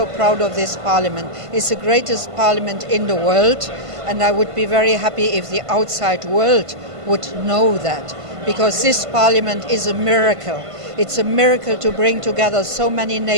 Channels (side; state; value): left; late; 1.5 ms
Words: proud of this Parliament. It's the greatest Parliament in the world, and I would be very happy if the outside world would know that. Because this Parliament is a miracle. It's a miracle to bring together so many